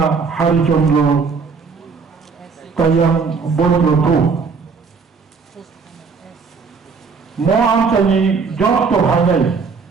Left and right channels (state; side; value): quieter; left; 5.1 dB